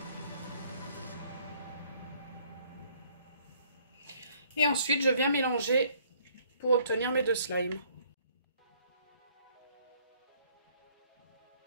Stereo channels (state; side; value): inverted; both; correlation -0.62